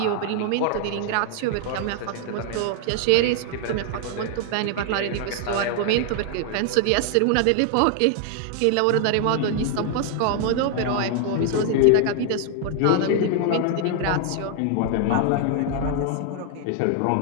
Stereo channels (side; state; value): both; different; correlation 0.00